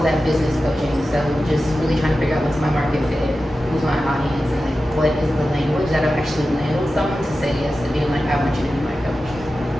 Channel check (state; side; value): normal; both; correlation 0.93